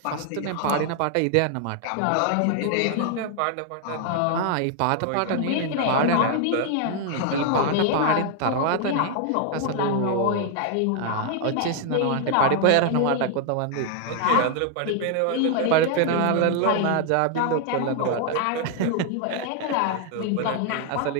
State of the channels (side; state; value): both; different; correlation 0.00